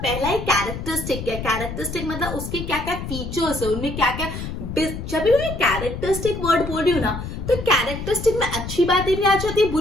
ही कैरेक्टरिस्टिक क्या है. कैरेक्टरिस्टिक मतलब उसके क्या क्या फीचर्स है, उनमें क्या क्या. जब भी मैं कैरेक्टरिस्टिक वर्ड बोल रही हूँ ना, तो कैरेक्टरिस्टिक में अच्छी बातें भी आ जाती है,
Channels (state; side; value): noise; left; rumble, 7 dB below the sound